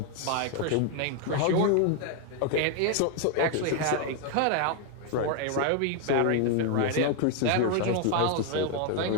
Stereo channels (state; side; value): different; both; correlation 0.00